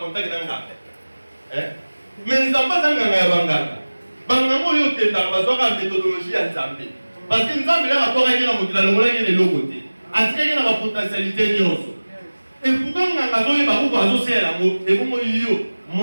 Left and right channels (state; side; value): inverted; both; correlation -1.00